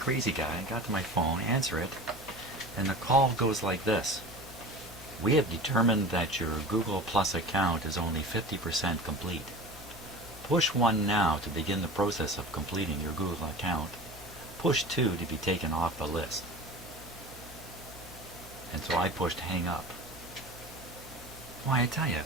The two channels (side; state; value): both; normal; correlation 0.36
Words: guy. I got to my phone, answer it, and the call goes like this. We have determined that your Google Plus account is only 50% complete. Push 1 now to begin the process of completing your Google account. Push 2 to be taken off the list. And so I pushed hang up. Why, I tell you,